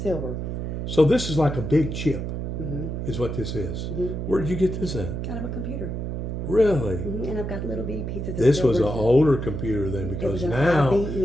So this is like a big chip, Mm-hmm. is what this is. Mm-hmm. Where did you get this at? Kind of a computer. Really? Mm-hmm. And I've got little bitty pieces of This silver. was an older computer then, It was because an now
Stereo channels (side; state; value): right; noise; hum, 4 dB below the sound